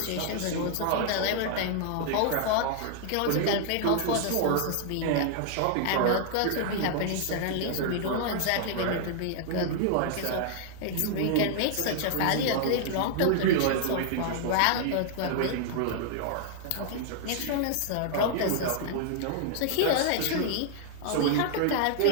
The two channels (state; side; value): different; both; correlation -0.01